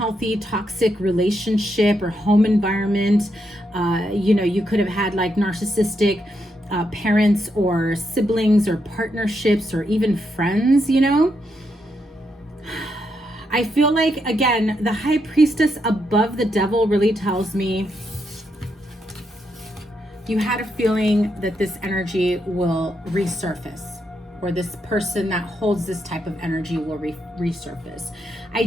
toxic relationship or home environment, you know, you could have had like narcissistic parents or siblings or partnerships or even friends, you know. I feel like, again, the High Priestess above the Devil really tells me you had a feeling that this energy will resurface, or this person that holds this type of energy will resurface. I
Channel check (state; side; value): normal; both; correlation 0.80